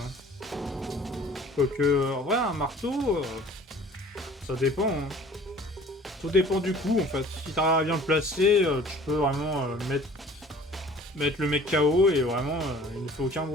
Quoique, en vrai, un marteau... ça dépend, hein. Tout dépend du coup, en fait. Si t'arrives à bien le placer, tu peux vraiment mettre le mec KO et vraiment, il ne fait aucun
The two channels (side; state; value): both; normal; correlation 0.49